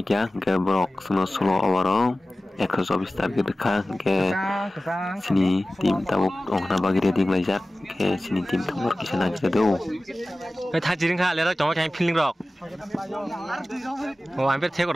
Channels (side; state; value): both; normal; correlation 0.96